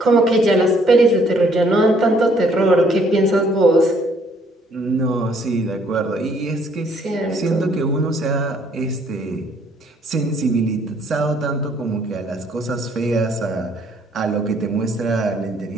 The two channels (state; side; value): normal; both; correlation 0.64